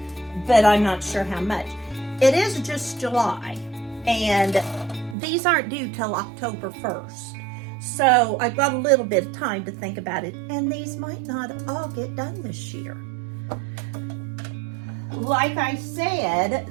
but I'm not sure how much. It is just July, and these aren't due till October 1st. So I've got a little bit of time to think about it, and these might not all get done this year. Like I said,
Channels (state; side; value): drops out; left; at 5.2 s